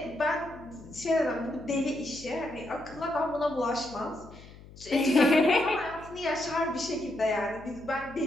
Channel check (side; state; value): left; noise; hum, 19 dB below the sound